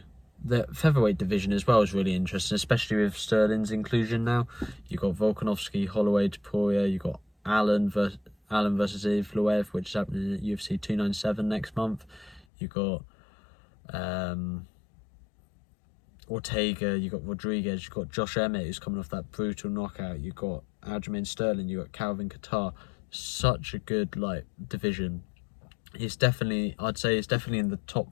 the featherweight division as well is really interesting, especially with Sterling's inclusion now. You've got Volkanovski, Holloway, Topuria. You've got Allen versus Evloev, which is happening at UFC 297 next month. You've got Ortega, you've got Rodriguez, you've got Josh Emmett, who's coming off that brutal knockout. You've got Aljamain Sterling, you've got Calvin Kattar. Such a good division. I'd say it's definitely in the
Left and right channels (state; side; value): drops out; right; at 12.5 s